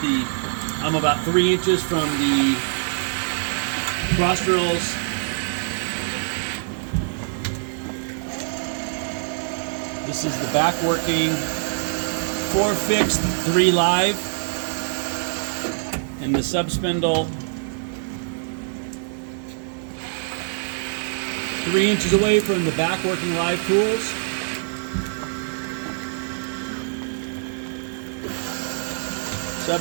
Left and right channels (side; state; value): left; silent; 61 dB below the other